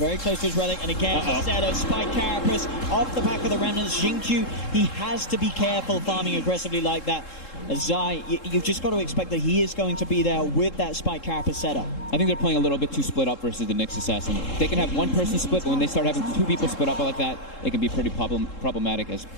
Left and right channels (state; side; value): late; right; 3.7 ms